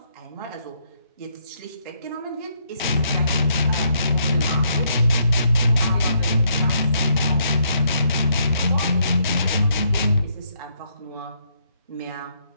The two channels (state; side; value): inverted; both; correlation -0.73